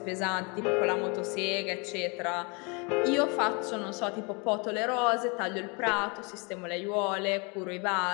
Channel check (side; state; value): right; quieter; 31.0 dB